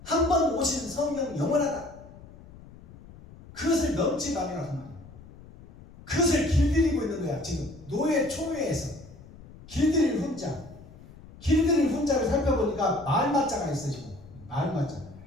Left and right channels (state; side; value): noise; left; rumble, 20 dB below the sound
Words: 한 번 오신 성령 영원하다. 그것을 넘지 말아라 그 말이에요. 그것을 길들이고 있는 거야. 지금 노예 초회에서 길들일 훈자를 살펴보니까 말맞자가 있어. 지금 말맞자